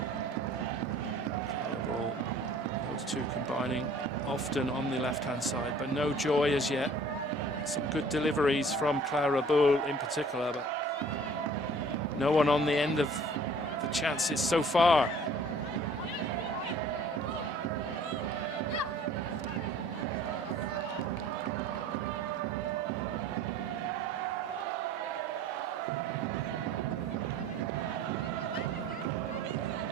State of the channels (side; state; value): both; normal; correlation 0.51